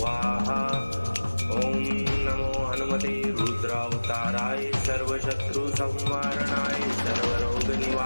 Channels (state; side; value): inverted; both; correlation -1.00